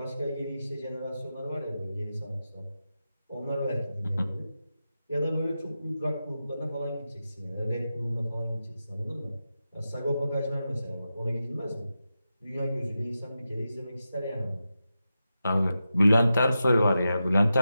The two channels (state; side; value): inverted; both; correlation -0.90